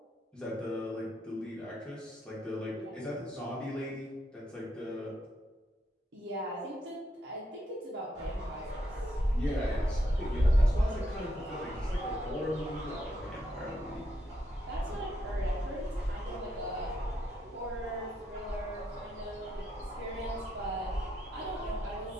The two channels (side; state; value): both; normal; correlation 0.78